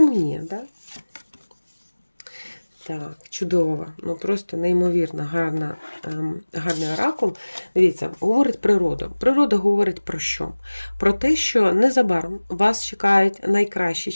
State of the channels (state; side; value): inverted; both; correlation -1.00